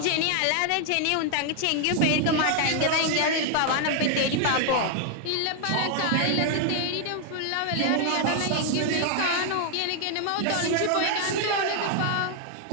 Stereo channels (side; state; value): both; different; correlation 0.00